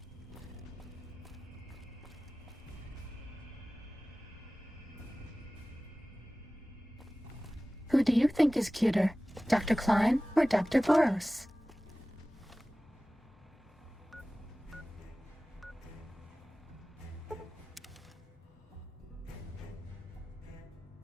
Who do you think is cuter, Dr. Klein or Dr. Boros?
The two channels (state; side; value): normal; both; correlation 0.97